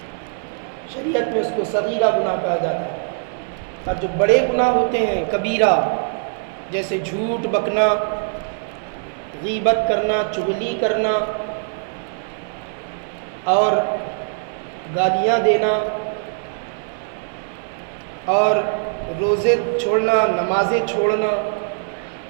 شریعت میں اس کو صغیرہ گناہ کہا جاتا ہے۔ اور جو بڑے گناہ ہوتے ہیں کبیرہ، جیسے جھوٹ بکنا، غیبت کرنا، چغلی کرنا اور گالیاں دینا اور روزے چھوڑنا، نمازیں چھوڑنا،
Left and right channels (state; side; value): silent; left; digital silence